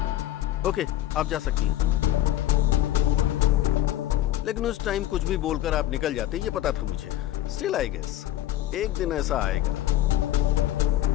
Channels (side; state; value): right; quieter; 13.6 dB